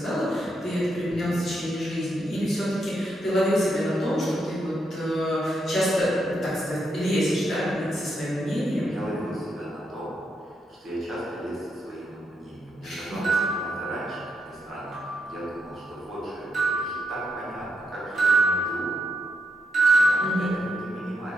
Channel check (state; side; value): normal; both; correlation 0.81